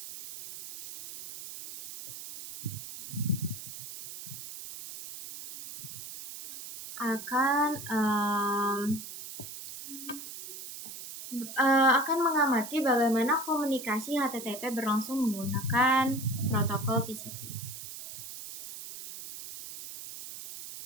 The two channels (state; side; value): noise; right; hiss, 11 dB below the sound